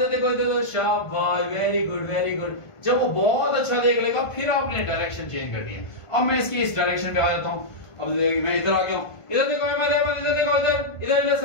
देखो, शाबाश, वेरी गुड। जब वो बहुत अच्छा देख लेगा फिर आपने डायरेक्शन चेंज करनी है। अब मैं इसकी इस डायरेक्शन पे आ जाता हूं। अब मैं इधर आ गया हूं। इधर देखो अहमद, इधर देखो, इधर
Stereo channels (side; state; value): right; late; 1.5 ms